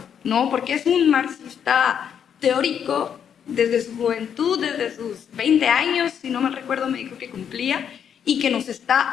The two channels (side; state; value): right; quieter; 8.2 dB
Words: ¿no? Porque es un marxista teórico desde su juventud, desde sus 20 años, si no me recuerdo, me dijo que cumplía, y que nos